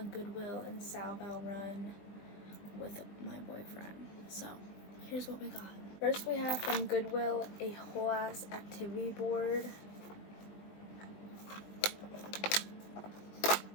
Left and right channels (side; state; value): right; late; 20 ms